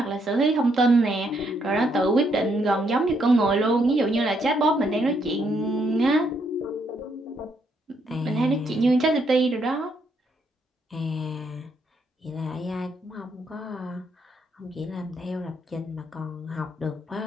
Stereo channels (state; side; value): normal; both; correlation 0.74